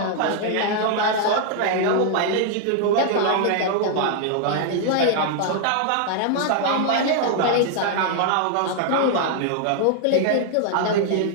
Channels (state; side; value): different; both; correlation 0.00